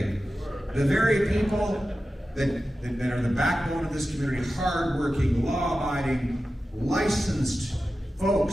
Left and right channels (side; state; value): both; normal; correlation 0.93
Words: The very people that are the backbone of this community, hardworking, law-abiding, licensed